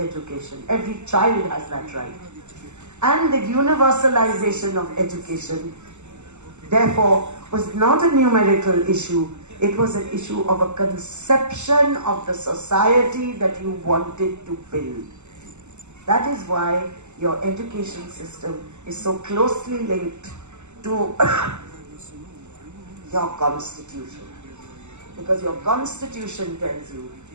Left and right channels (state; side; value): late; left; 0.83 ms